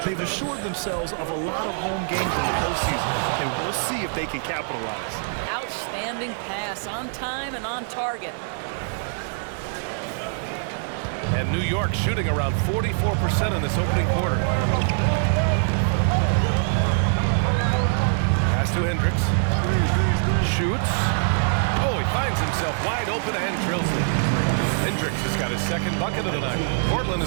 They've assured themselves of a lot of home games in the postseason, and we'll see if they can capitalize. Outstanding pass, on time and on target. And New York shooting around 44% in this opening quarter. Pass to Hendricks. Shoots. Oh, he finds himself wide open and drills it. Hendricks has got his second bucket of the night. Portland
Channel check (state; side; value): silent; left; 63 dB below the other